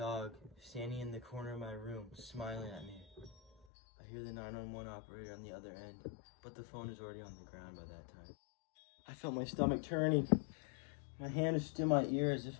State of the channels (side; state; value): right; drops out; at 3.7 s